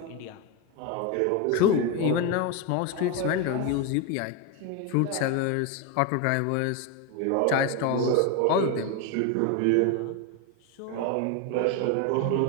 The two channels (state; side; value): different; both; correlation 0.02